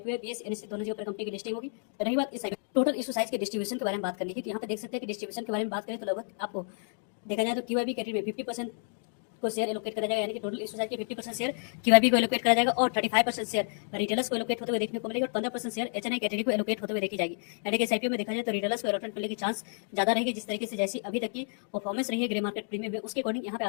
BS NSC दोनों जगह पर कंपनी की लिस्टिंग होगी। रही बात इस टोटल इशू साइज के डिस्ट्रीब्यूशन के बारे में बात करनी थी तो यहाँ पे देख सकते हैं कि डिस्ट्रीब्यूशन के बारे में बात करें तो लगभग आपको देखा जाए तो क्यूआईबी कैटेगरी में 50% को शेयर एलोकेट करा जाएगा। यानी कि टोटल इशू साइज के 50% शेयर क्यूआईबी को एलोकेट करा जाएगा और 35% शेयर रिटेलर्स को एलोकेट होते हुए देखने को मिलेगा और 15% शेयर एचएनआई कैटेगरी को एलोकेट होते हुए देखी जाएगी। यानी कि इस आईपीओ में देखा जाए तो रिटेलर्स को एलोकेट मिलने की चांस ज्यादा रहेगी। जिस तरीके से जैसी अभी तक की परफॉर्मेंस रही है ग्रे मार्केट प्रीमियम में उसके अकॉर्डिंग यहाँ पे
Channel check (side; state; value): right; silent; 58 dB below the other